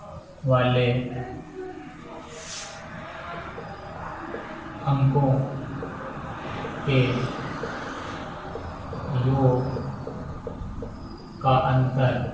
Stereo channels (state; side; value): identical; both; correlation 1.00